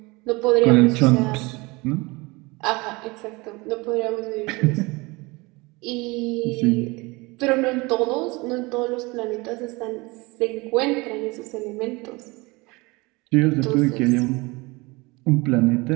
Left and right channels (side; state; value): left; quieter; 24.5 dB